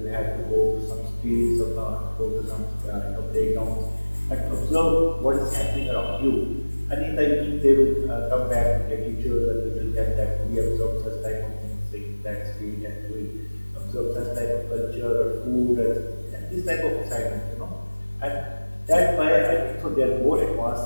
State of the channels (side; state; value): both; inverted; correlation -1.00